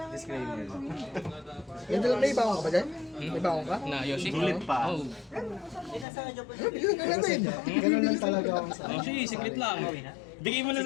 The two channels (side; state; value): right; drops out; at 6.1 s